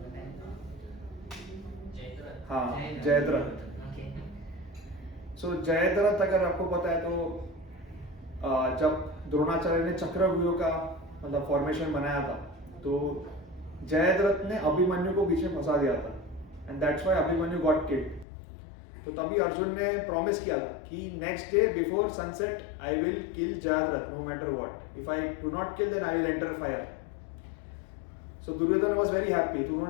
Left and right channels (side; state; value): right; drops out; at 18.2 s